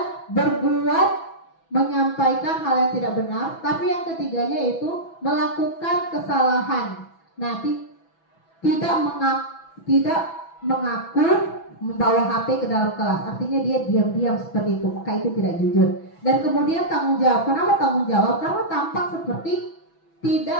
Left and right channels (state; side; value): late; right; 6.1 ms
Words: berbuat, menyampaikan hal yang tidak benar, tapi yang ketiganya itu melakukan kesalahan. Nah, tidak mengaku membawa HP ke dalam kelas, artinya dia diam-diam seperti itu, maka itu tidak jujur. Dan kemudian tanggung jawab. Kenapa tanggung jawab? Karena tampak seperti